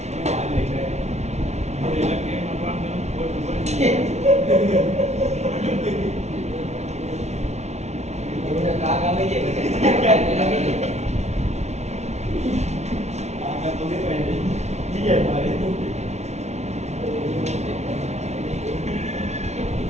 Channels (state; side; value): late; left; 0.32 ms